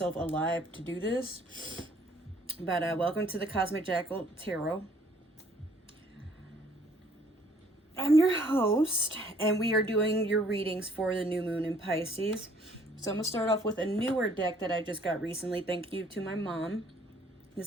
alive to do this. But welcome to the Cosmic Jackal Tarot. I'm your host, and we are doing your readings for the new moon in Pisces. So I'm going to start off with a newer deck that I just got recently. Thank you to my mom.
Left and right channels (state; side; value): normal; both; correlation 0.61